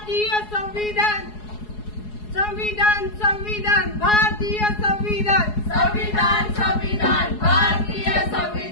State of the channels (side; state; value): right; late; 4.8 ms